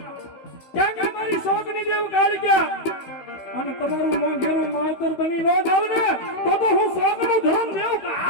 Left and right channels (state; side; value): late; right; 16 ms